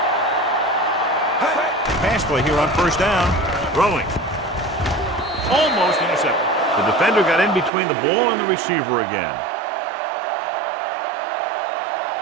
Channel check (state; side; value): drops out; left; at 7.7 s